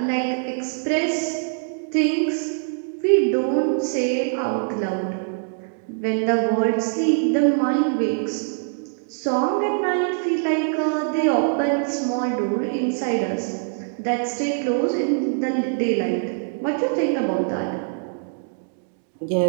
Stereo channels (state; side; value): silent; left; digital silence